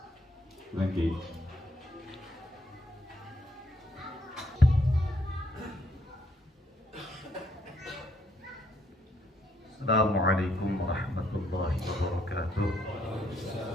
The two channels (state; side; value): normal; both; correlation 0.72